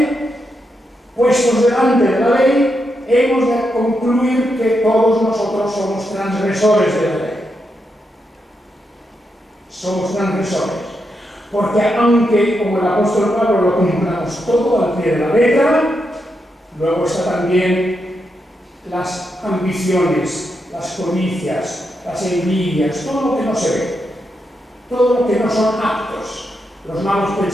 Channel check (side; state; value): both; normal; correlation 0.84